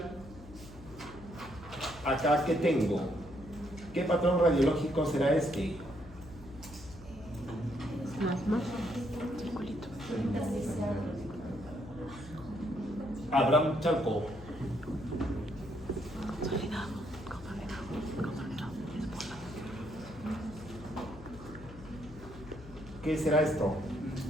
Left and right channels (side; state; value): left; noise; hum, 17 dB below the sound